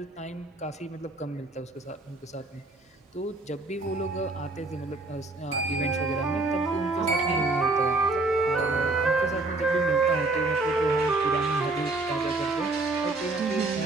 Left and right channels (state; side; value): quieter; left; 3.1 dB